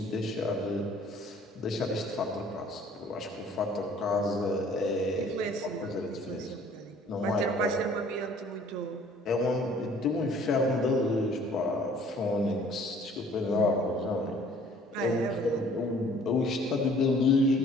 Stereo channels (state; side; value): normal; both; correlation 0.55